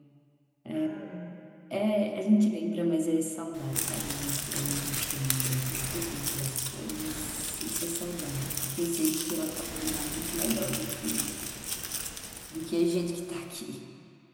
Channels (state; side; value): identical; both; correlation 1.00